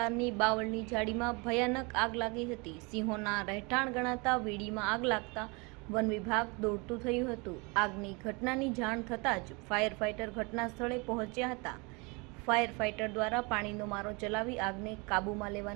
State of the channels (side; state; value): left; quieter; 29.1 dB